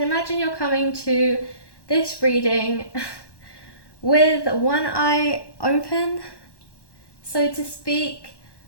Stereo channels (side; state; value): right; late; 1.1 ms